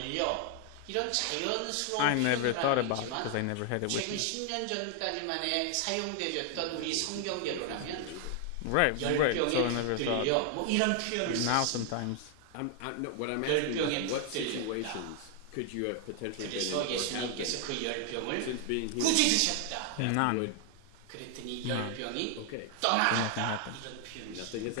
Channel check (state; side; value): different; both; correlation 0.00